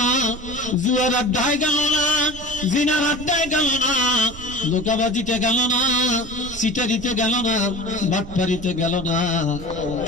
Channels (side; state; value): right; noise; rumble, 14 dB below the sound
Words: জুয়ার আড্ডায় গেল না, জিনার আড্ডায় গেল না, ধোঁকাবাজিতে গেল না, সিটারিতে গেল না, বাটপারিতে গেল না,